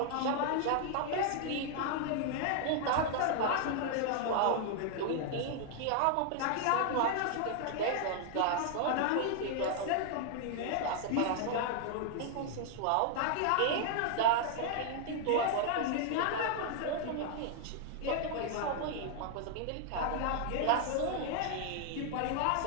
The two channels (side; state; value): both; different; correlation 0.00